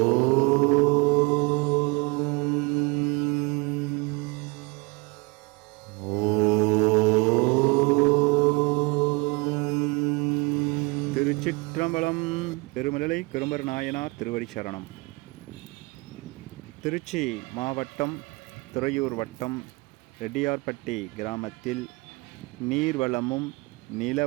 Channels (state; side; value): quieter; left; 27.0 dB